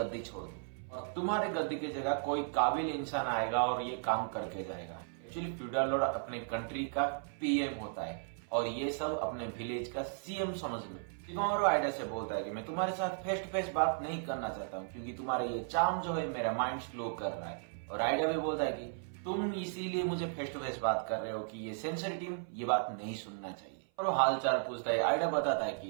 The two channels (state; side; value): silent; left; 54 dB below the other